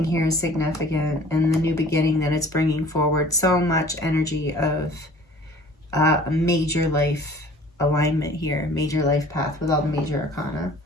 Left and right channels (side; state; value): both; normal; correlation 0.49